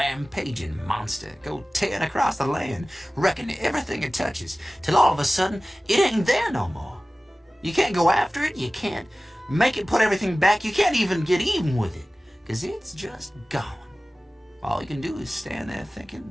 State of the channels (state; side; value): normal; both; correlation 0.97